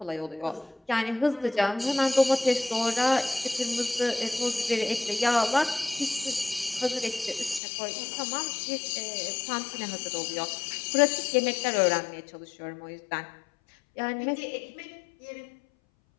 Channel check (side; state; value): right; drops out; at 7.6 s